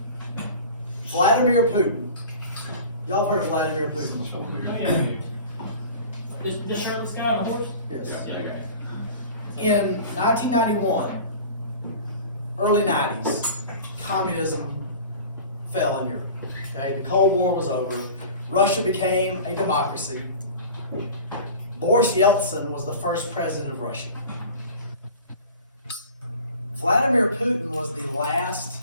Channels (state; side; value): inverted; both; correlation -0.39